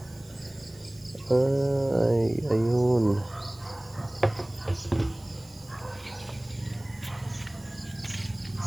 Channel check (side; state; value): right; noise; hiss, 25 dB below the sound